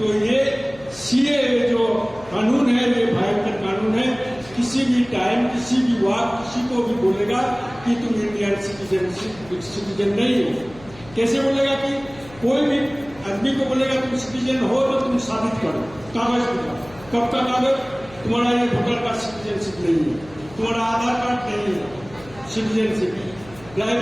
ये सीए जो कानून है ये भयंकर कानून है। किसी भी टाइम, किसी भी वक्त किसी को भी बोलेगा कि तुम इंडियन सिटीजन नहीं हो। कैसे बोलेगा कि कोई भी आदमी को बोलेगा तुम सिटीजन हो तो तुम साबित करो, कागज दिखाओ। कब का कागज? तुम्हारा ये वोटर कार्ड सिटीजनशिप नहीं है, तुम्हारा आधार कार्ड नहीं है सिटीजनशिप,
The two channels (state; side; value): noise; left; hum, 21 dB below the sound